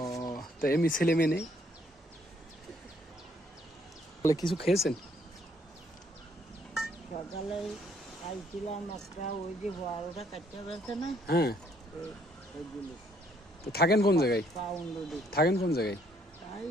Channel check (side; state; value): both; normal; correlation 0.67